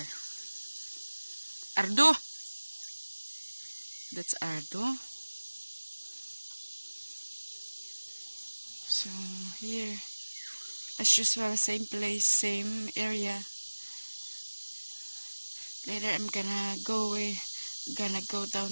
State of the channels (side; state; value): both; inverted; correlation -1.00